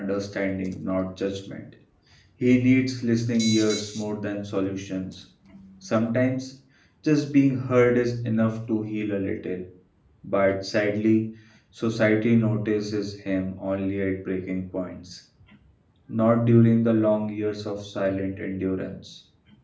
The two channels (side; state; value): both; identical; correlation 1.00